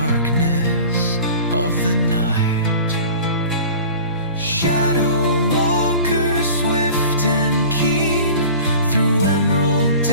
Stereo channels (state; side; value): inverted; both; correlation -0.40